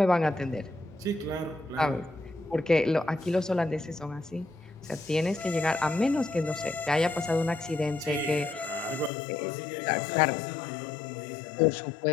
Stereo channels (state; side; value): drops out; right; at 9.1 s